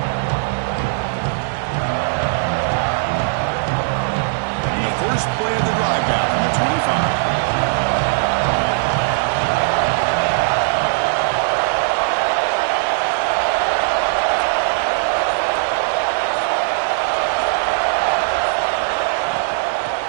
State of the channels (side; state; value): left; silent; digital silence